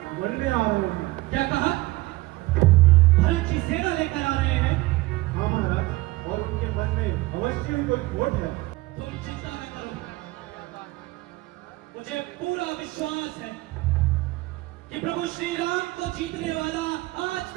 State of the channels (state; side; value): quieter; left; 20.2 dB